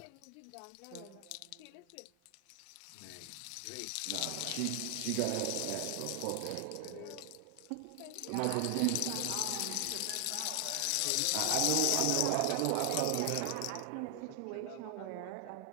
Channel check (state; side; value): different; both; correlation 0.00